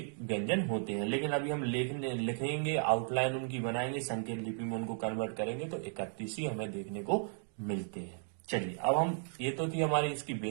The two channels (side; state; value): left; silent; 54 dB below the other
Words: व्यंजन होते हैं। लेकिन अभी हम लिखेंगे, आउटलाइन उनकी बनाएंगे, संकेत लिपि में उनको कन्वर्ट करेंगे तो 31 ही हमें देखने को मिलते हैं। चलिए अब हम, ये तो थी हमारी इसकी